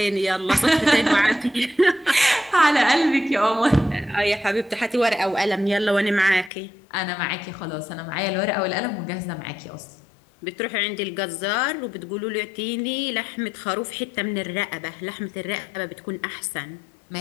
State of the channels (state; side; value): drops out; right; at 6.5 s